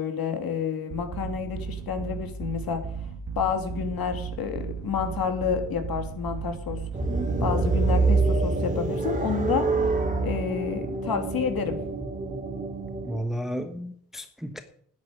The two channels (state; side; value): normal; both; correlation 0.48